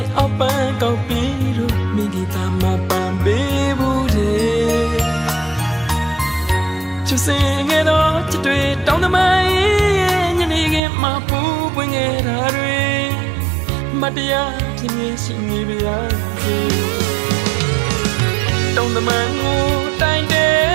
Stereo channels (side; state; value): left; drops out; at 10.8 s